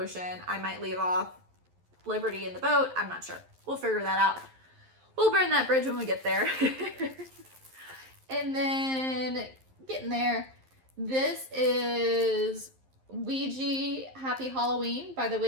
I might leave off Liberty in the boat. I'm not sure. We'll figure that out. We'll burn that bridge when we get there. And then getting there, this is Ouija Happy Halloween by the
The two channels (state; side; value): late; left; 11 ms